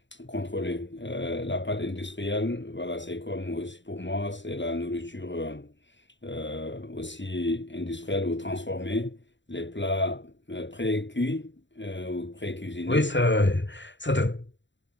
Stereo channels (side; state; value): right; late; 0.53 ms